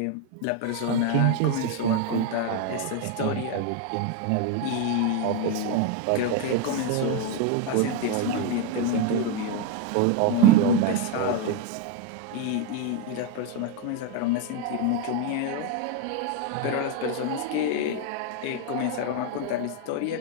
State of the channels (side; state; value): both; different; correlation 0.02